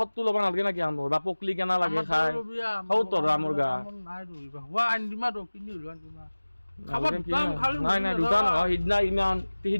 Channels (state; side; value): inverted; both; correlation -1.00